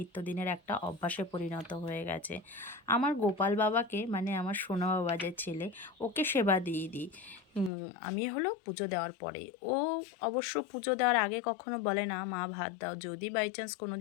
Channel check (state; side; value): drops out; right; at 7.7 s